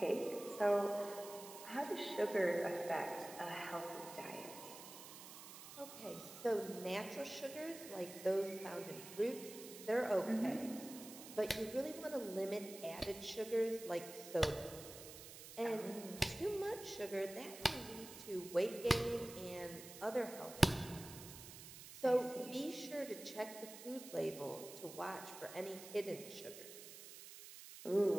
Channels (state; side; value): noise; right; hiss, 13 dB below the sound